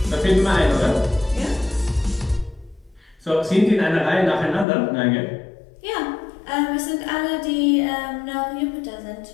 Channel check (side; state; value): right; drops out; at 4.7 s